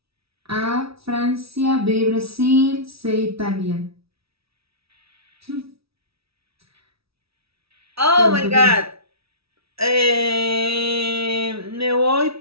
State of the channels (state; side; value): late; left; 0.76 ms